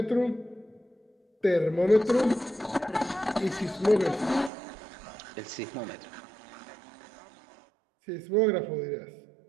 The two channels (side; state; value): left; drops out; at 4.5 s